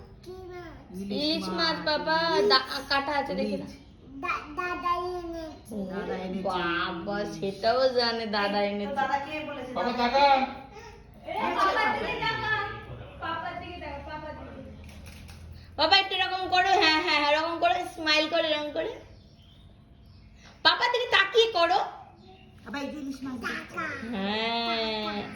ইলিশ মাছ বাবা কাটা আছে দেখি না। দাদা এনেছে। বাবা সেটাও জানে দাদা এনেছে। দাদা কে বলেছে? বাবা টাকা। বাবা একটু এরকম করো, হ্যাঁ হ্যাঁ এরকম করে স্মাইল করে এরকম করে পাপা দিকে তাকিয়ে করো। আবার এই যে ইলিশ মাছ দিয়েছে। হ্যাঁ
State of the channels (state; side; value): identical; both; correlation 1.00